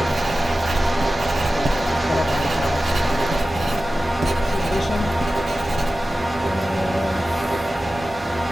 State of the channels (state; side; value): normal; both; correlation 0.95